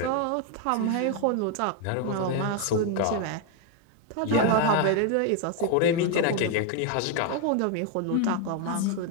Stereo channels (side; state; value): both; different; correlation 0.01